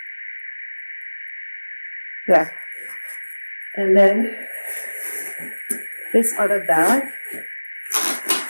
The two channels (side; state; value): both; inverted; correlation -1.00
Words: Yeah. And then this other bag